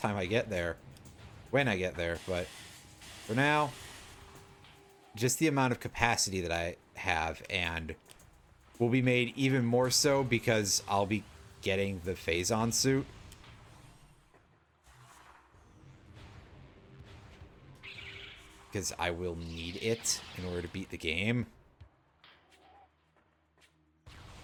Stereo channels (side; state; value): both; identical; correlation 1.00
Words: I get there. When I get there, but for now, just the amount of capacity that I have, and will be made even more so because I'll be getting the Phazon suit. Because I will need it in order to beat the game.